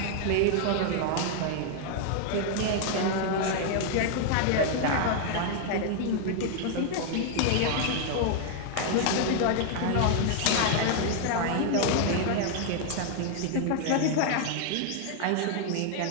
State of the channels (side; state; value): both; different; correlation 0.00